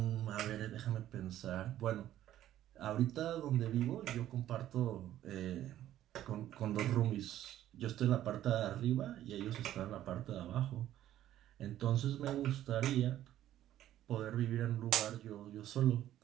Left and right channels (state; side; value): quieter; left; 12.6 dB